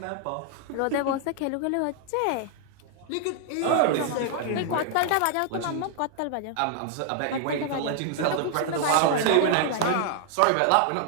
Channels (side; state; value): both; different; correlation -0.01